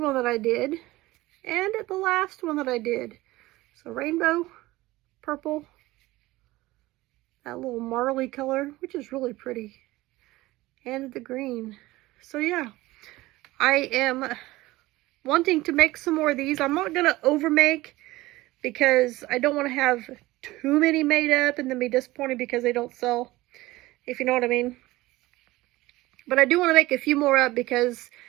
that I did. And the last one that I did. So rainbow, purple, that little marley color, which is really pretty, and the green. So yeah, I am wanting to make some more of these. I'm not going to overmake because I don't want to have too many made up and then be disappointed because they don't sell, if you know what I mean. But I do want to make a few more up because,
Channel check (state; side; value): quieter; left; 18.7 dB